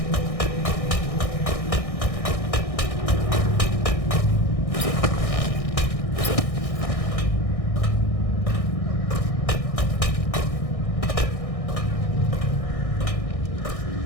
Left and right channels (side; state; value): right; late; 1.6 ms